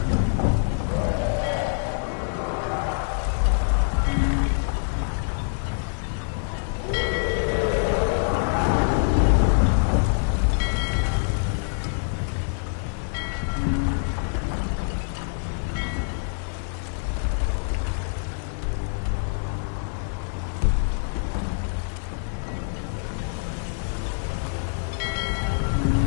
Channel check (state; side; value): silent; right; 59 dB below the other